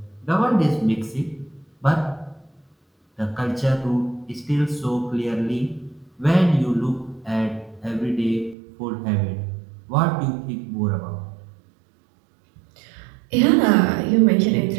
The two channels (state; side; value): drops out; left; at 8.6 s